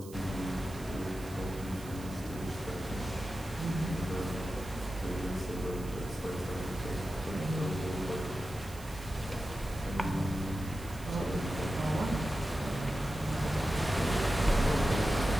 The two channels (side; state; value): right; noise; hiss, 18 dB below the sound